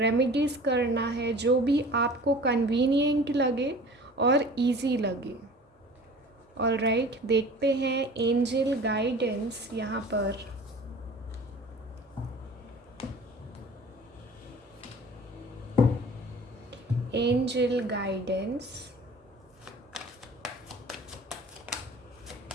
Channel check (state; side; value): normal; both; correlation 0.43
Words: करना है, जो भी आपको कन्वीनियंट लगे और इजी लगे। ऑलराइट, देखते हैं एंजल गाइडेंस यहाँ पर। Angel guidance,